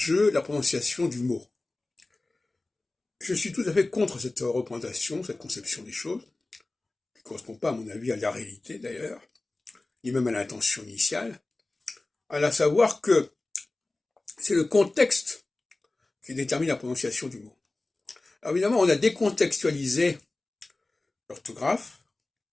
la prononciation du mot. Je suis tout à fait contre cette représentation, cette conception des choses, qui ne correspond pas, à mon avis, à la réalité d'ailleurs, ni même à l'intention initiale, à savoir que c'est le contexte qui détermine la prononciation du mot. Alors évidemment, on a décontextualisé l'orthographe,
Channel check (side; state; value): right; quieter; 3.1 dB